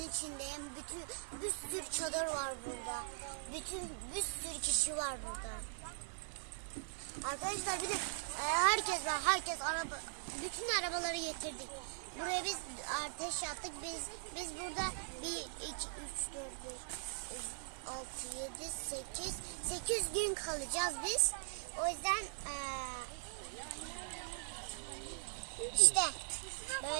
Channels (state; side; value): silent; left; digital silence